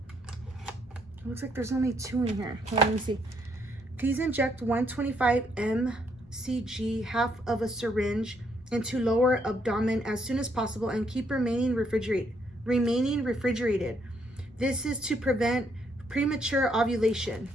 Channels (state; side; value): normal; both; correlation 0.73